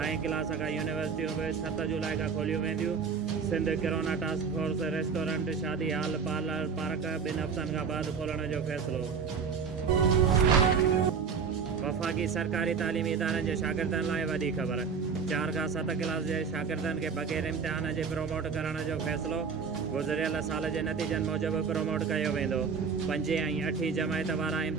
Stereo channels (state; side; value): quieter; left; 5.9 dB